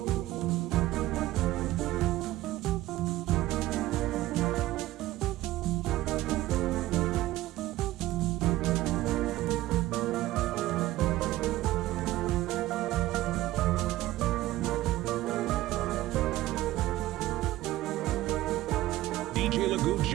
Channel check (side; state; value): left; quieter; 16.2 dB